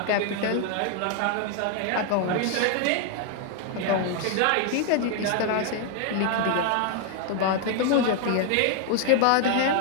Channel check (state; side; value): different; both; correlation 0.00